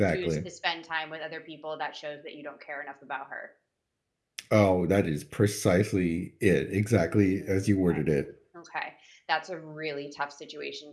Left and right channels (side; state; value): both; identical; correlation 1.00